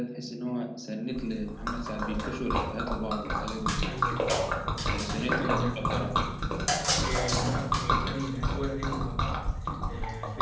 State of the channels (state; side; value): identical; both; correlation 1.00